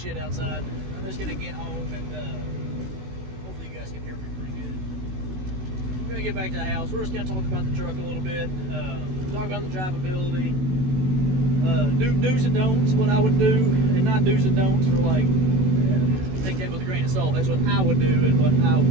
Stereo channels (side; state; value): left; late; 16 ms